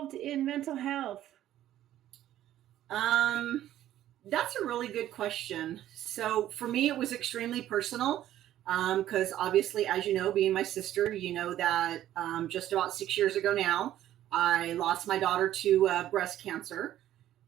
in mental health? That's a really good question. So for me, it was extremely personal, because obviously, as you know, being my sister, you know that just about 6 years ago now, I lost my daughter to breast cancer.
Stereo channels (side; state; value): left; quieter; 12.7 dB